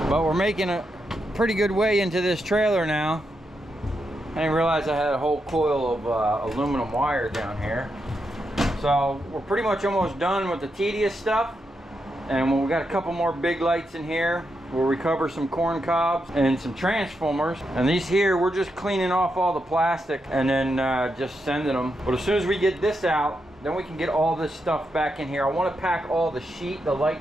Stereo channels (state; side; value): normal; both; correlation 0.84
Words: But we're making a pretty good way into this trailer now. I didn't realize I had a whole coil of aluminum wire down here. So we're pretty much almost done with the tedious stuff. And we got a couple more big lights in here. We'll recover some corn cobs and some transformers. And these here, we're just cleaning off all the plastic and then just sending them. But as soon as we get this out, then we can get all this stuff back in here. I want to pack all the sheet, the